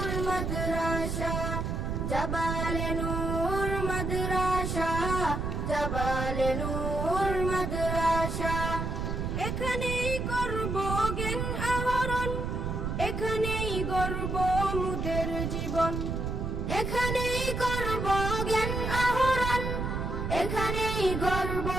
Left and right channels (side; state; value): right; noise; rumble, 2 dB below the sound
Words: মাদ্রাসা, জাবালে নূর মাদ্রাসা, জাবালে নূর মাদ্রাসা। এখানেই করব জ্ঞান আহরণ, এখানেই গড়ব মুদের জীবন, এখানেই করব জ্ঞান আহরণ, এখানেই গড়ব